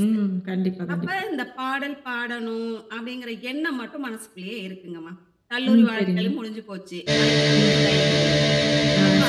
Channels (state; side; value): identical; both; correlation 1.00